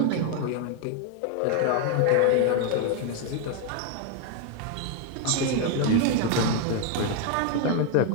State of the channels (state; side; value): different; both; correlation 0.01